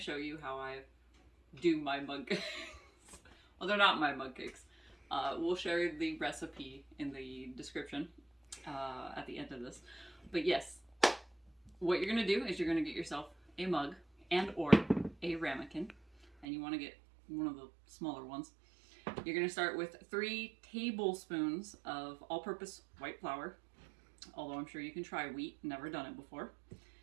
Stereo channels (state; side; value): drops out; left; at 16.4 s